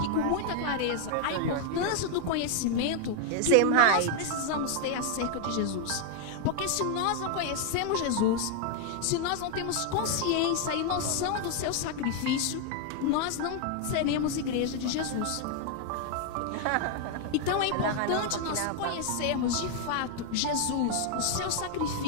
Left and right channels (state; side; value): different; both; correlation 0.00